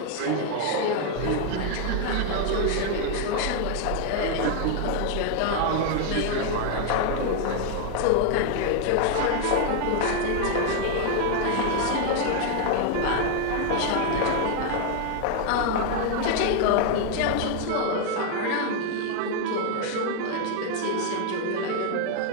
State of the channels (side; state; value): both; different; correlation 0.00